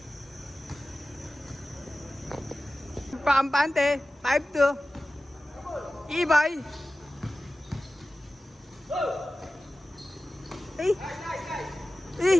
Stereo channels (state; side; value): normal; both; correlation 0.95